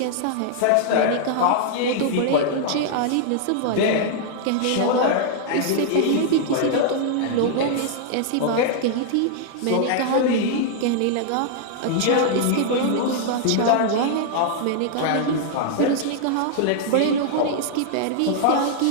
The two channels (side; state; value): both; different; correlation -0.01